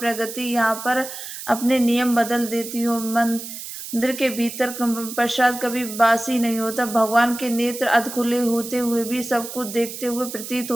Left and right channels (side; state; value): right; noise; hiss, 10 dB below the sound